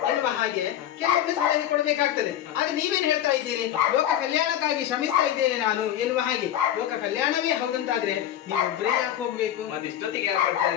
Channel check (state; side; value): quieter; right; 11.3 dB